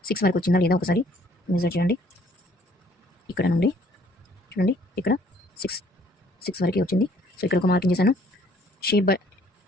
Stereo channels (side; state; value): both; normal; correlation 0.60